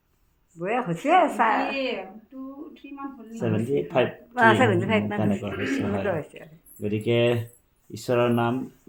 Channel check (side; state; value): both; identical; correlation 1.00